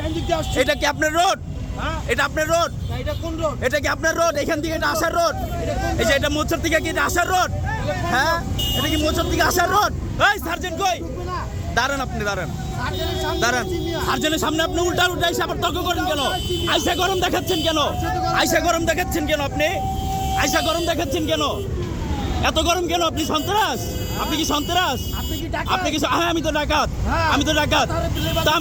এটা কি আপনার রোড? এটা আপনার রোড? এটা কি আপনার রোড? এখান থেকে এটা আসার রোড? এই যে এটা মোচর থেকে কি এটা আসার রোড? হ্যাঁ, এটা কি মোচর থেকে আসার রোড? এই সার্জেন্ট কই? দাঁড়ান, আপনি দাঁড়ান, দাঁড়ান। সার্জেন্টের সামনে আপনি উল্টা উল্টা এসে আবার তর্ক করেন কেন? আইসা গরম দেখাচ্ছেন কেন? আইসা গরম দেখাচ্ছেন কেন আপনি? আইসা গরম দেখাচ্ছেন কেন? এত গরম কেন? আপনি সন্ত্রাস? আপনি কি সন্ত্রাস? আপনি কি? হ্যাঁ, আমি তো ডাকাত, আমি তো ডাকাত। তা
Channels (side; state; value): both; identical; correlation 1.00